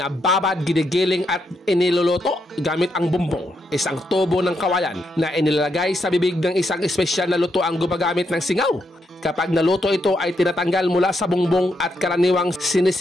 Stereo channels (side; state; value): both; normal; correlation 0.80